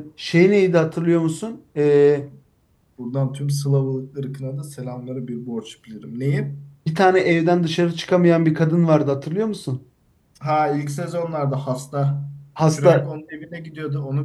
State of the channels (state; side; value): identical; both; correlation 1.00